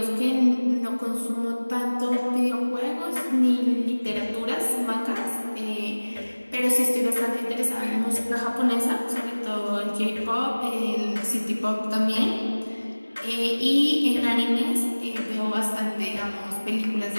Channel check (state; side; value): inverted; both; correlation -1.00